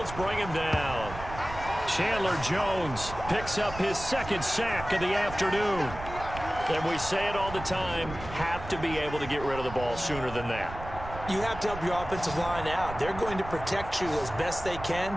bring him down. Chandler Jones picks up his 2nd sack of the afternoon. And we say it all the time, have to be able to get rid of the ball sooner than that. You have to help your offensive line out. They're going to protect you as best they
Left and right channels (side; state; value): right; noise; rumble, 11 dB below the sound